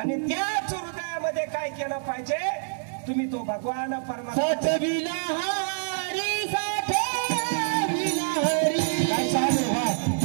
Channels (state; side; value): silent; left; digital silence